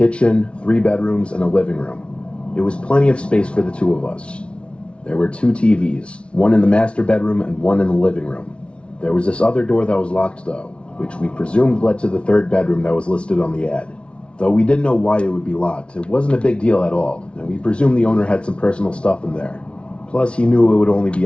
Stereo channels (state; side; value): late; right; 0.059 ms